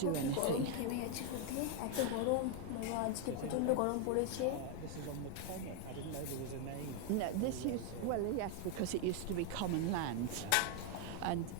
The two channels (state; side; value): different; both; correlation 0.01